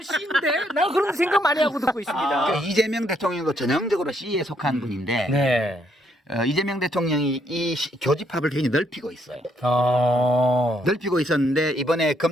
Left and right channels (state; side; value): normal; both; correlation 0.72